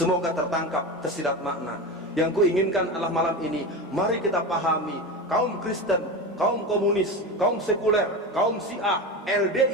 tertangkap tersirat makna. Yang kuinginkan adalah malam ini, mari kita pahami, kaum Kristen, kaum komunis, kaum sekuler, kaum Syiah,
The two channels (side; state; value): both; normal; correlation 0.23